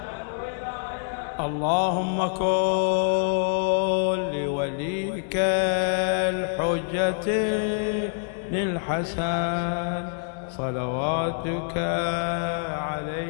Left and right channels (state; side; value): silent; right; digital silence